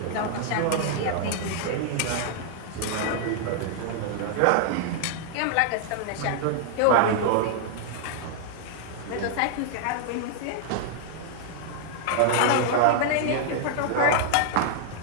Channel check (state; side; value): different; both; correlation 0.00